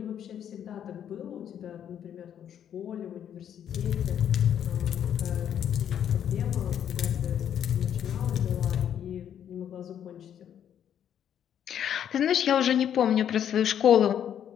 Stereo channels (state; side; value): quieter; right; 9.5 dB